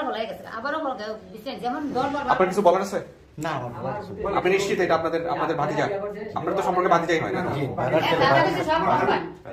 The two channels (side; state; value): both; identical; correlation 1.00